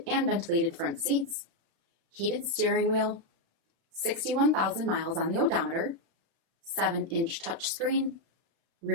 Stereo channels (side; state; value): left; late; 35 ms